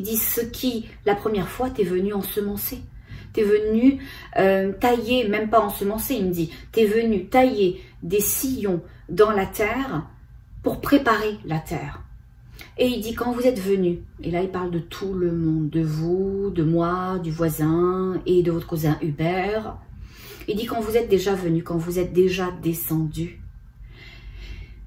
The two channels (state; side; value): identical; both; correlation 1.00